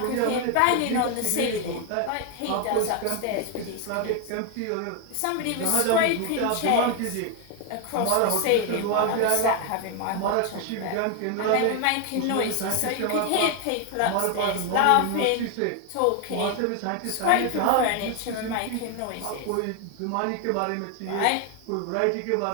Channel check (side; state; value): both; different; correlation 0.01